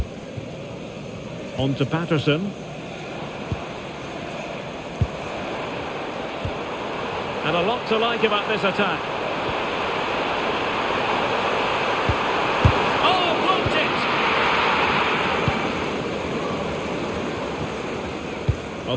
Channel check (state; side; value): identical; both; correlation 1.00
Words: On to Patterson. And a lot to like about this attack. Oh, blocked it! Well,